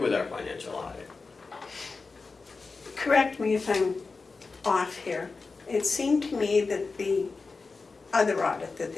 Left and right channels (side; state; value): right; quieter; 4.2 dB